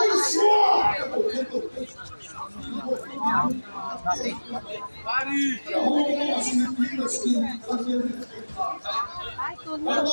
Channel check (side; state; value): both; inverted; correlation -1.00